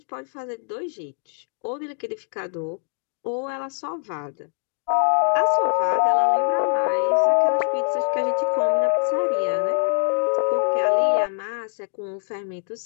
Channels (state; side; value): silent; right; digital silence